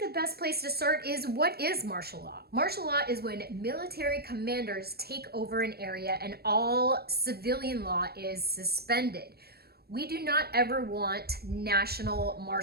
the best place to start is, what is martial law? Martial law is when military commanders take over an area and all civilian law is suspended. We do not ever want national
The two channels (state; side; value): late; left; 0.46 ms